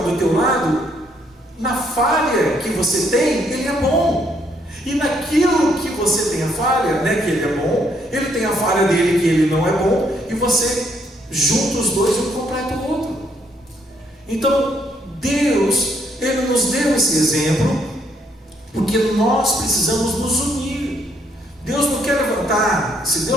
do teu lado, na falha que você tem, ele é bom. E naquilo que você tem a falha, né, que ele é bom, ele tem a falha dele que ele não é bom, e você junta os dois e um completa o outro. Então Deus, Ele nos deu esse exemplo porque nós precisamos nos unir. Deus não quer levantar. Se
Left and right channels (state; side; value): normal; both; correlation 0.71